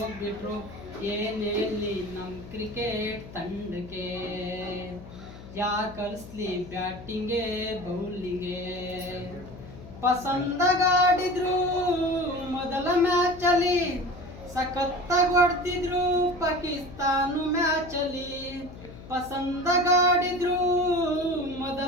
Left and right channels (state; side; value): noise; left; hum, 15 dB below the sound